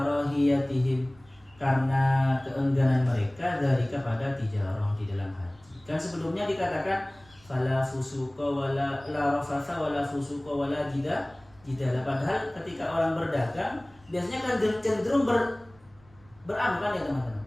karena keengganan mereka dari kepada tijarah di dalam haji. Kan sebelumnya dikatakan fala fusuqa wala la rafatha wala fusuqa wala jidala. Padahal ketika orang berdagang biasanya kan cenderung beranu kan ya teman-teman.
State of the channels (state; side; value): noise; right; rumble, 28 dB below the sound